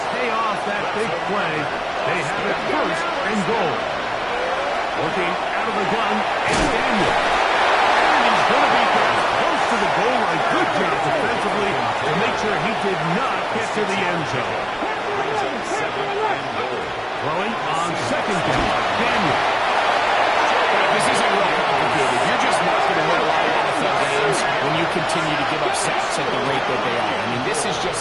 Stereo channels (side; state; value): both; identical; correlation 1.00